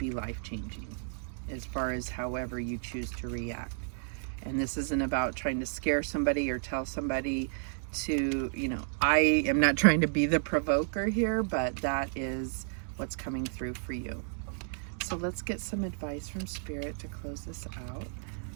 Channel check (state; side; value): silent; left; digital silence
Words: life-changing as far as however you choose to react. And this isn't about trying to scare somebody or tell somebody to, you know, I am not trying to be the provoker here, but that is what's coming through for you. So let's get some advice from Spirit to close this out.